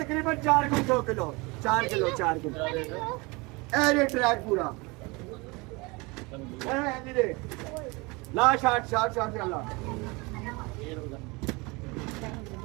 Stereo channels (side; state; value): left; quieter; 26.2 dB